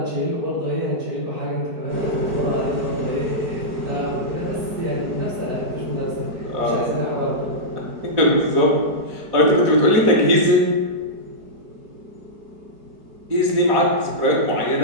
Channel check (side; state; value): left; late; 4.7 ms